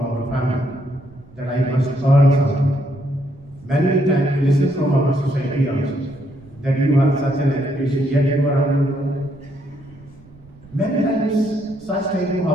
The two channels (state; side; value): noise; right; rumble, 23 dB below the sound